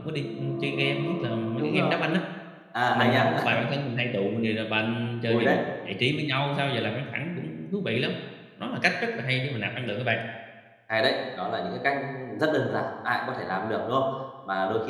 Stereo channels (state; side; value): identical; both; correlation 1.00